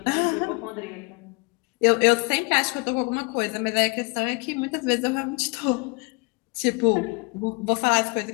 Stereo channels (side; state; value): right; quieter; 29.1 dB